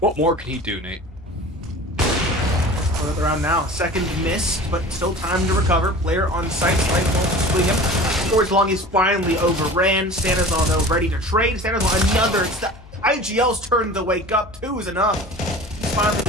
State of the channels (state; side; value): noise; left; hum, 21 dB below the sound